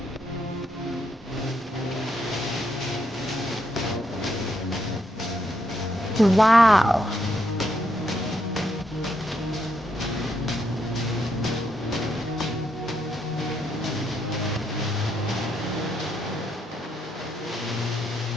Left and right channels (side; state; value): both; normal; correlation 0.77